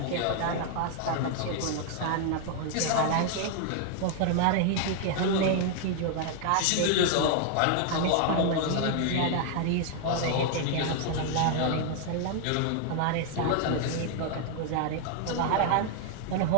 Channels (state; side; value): different; both; correlation 0.00